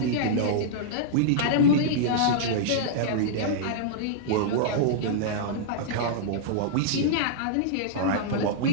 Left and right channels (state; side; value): different; both; correlation -0.02